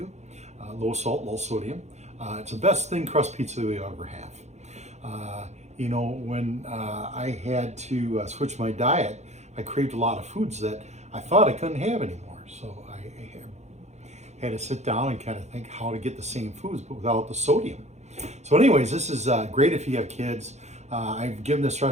Low salt, low sodium. It's the best thin crust pizza we ever have. When I had to switch my diet, I craved a lot of foods that I thought I couldn't have anymore. So I had to sit down and kind of think how to get the same foods but without the sodium. So anyways, this is great if you have kids. I've given this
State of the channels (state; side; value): late; left; 0.33 ms